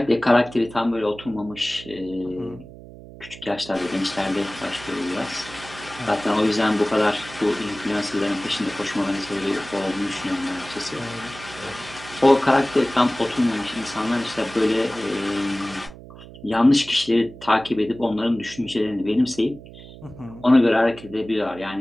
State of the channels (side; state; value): right; noise; hum, 17 dB below the sound